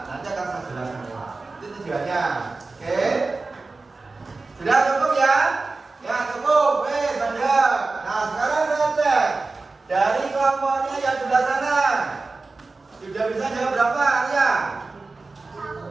nanti akan saya jelaskan. Itu tujuannya. Oke? Sudah cukup ya? Ya cukup, Banda. Nah sekarang saya cek dari kelompoknya yang sebelah sana sudah bisa jawab berapa ya?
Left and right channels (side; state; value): left; quieter; 3.7 dB